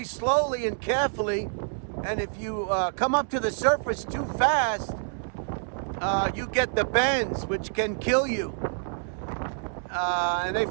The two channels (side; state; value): left; silent; digital silence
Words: slowly and carefully, and if you come up to the surface too fast, you get the bends, which can kill you. And they